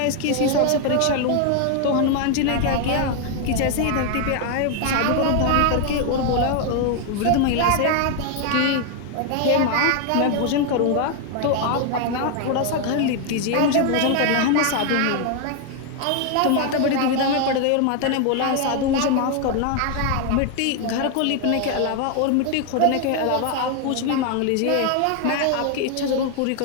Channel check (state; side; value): different; both; correlation 0.01